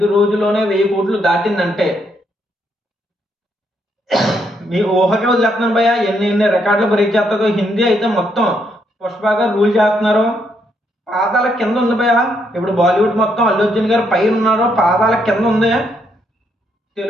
రోజుల్లోనే 1000 కోట్లు దాటిందంటే మీ ఊహకే వదిలేస్తున్నాను భయ్య, ఎన్ని రికార్డులు బ్రేక్ చేస్తుందో. హిందీ అయితే మొత్తం పుష్ప గారు రూల్ చేస్తున్నారు. పాదాల కింద ఉంది భయ్య. ఇప్పుడు బాలీవుడ్ మొత్తం అల్లు అర్జున్ గారు పైన ఉన్నారు, పాదాల కింద ఉంది.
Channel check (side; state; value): both; normal; correlation 0.75